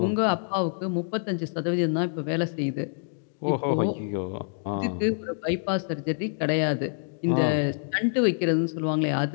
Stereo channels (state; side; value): silent; right; digital silence